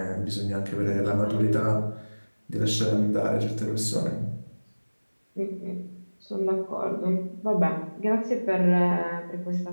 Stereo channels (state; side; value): inverted; both; correlation -1.00